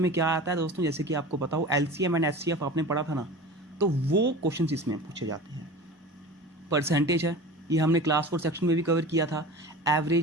में क्या आता है दोस्तों, जैसे कि आपको पता हो LCM एंड HCF आपने पढ़ा था ना, तो वो क्वेश्चन इसमें पूछे जाते हैं। परसेंटेज है, ये हमने क्लास 4 सेक्शन में भी कवर किया था।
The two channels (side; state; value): both; normal; correlation 0.35